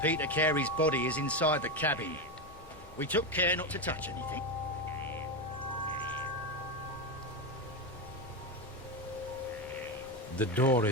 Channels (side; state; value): both; normal; correlation 0.12